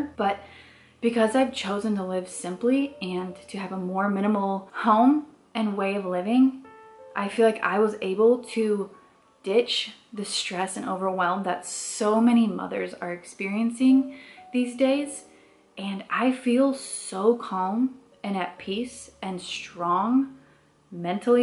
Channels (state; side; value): identical; both; correlation 1.00